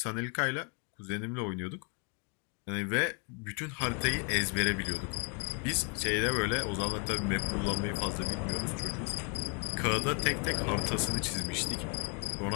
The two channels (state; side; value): quieter; right; 33.3 dB